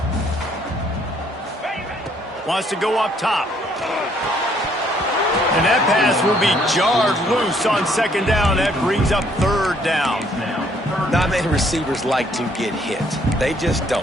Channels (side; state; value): both; normal; correlation 0.66